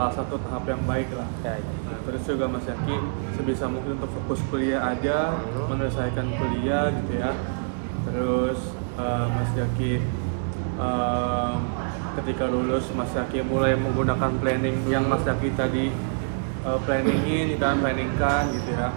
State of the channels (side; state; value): left; silent; digital silence